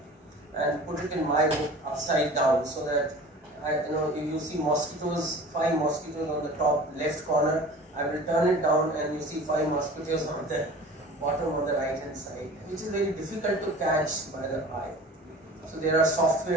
and put it in my book upside down, so that if you see mosquitoes, 5 mosquitoes on the top left corner, I will turn it down and you see 5 mosquitoes on the bottom on the right hand side, which is very difficult to catch by the eye. So there are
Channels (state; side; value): normal; both; correlation 0.41